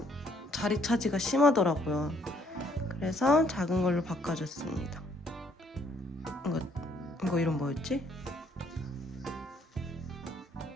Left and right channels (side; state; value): both; normal; correlation 0.66